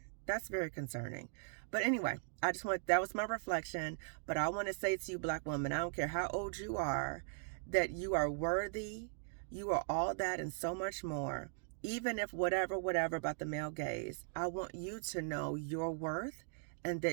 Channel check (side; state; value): left; silent; digital silence